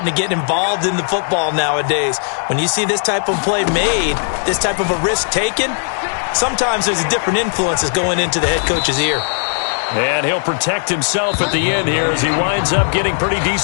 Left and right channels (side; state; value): right; silent; 65 dB below the other